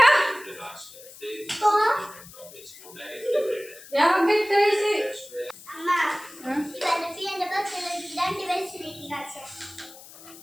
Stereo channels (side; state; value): left; noise; hiss, 18 dB below the sound